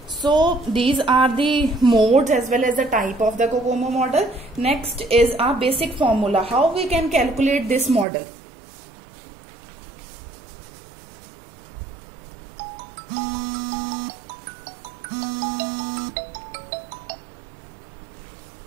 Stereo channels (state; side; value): drops out; left; at 8.1 s